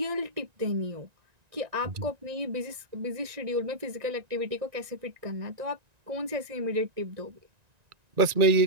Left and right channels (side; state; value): left; late; 1.9 ms